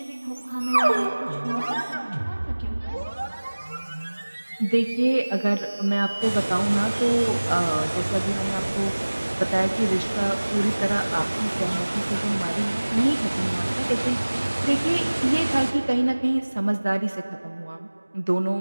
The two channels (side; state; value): both; inverted; correlation -1.00